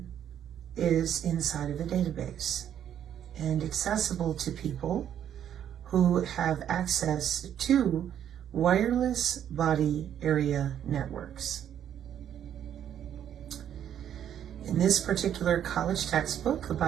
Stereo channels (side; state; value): left; quieter; 9.9 dB